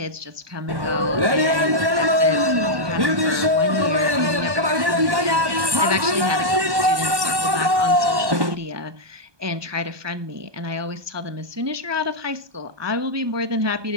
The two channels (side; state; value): left; late; 1.2 ms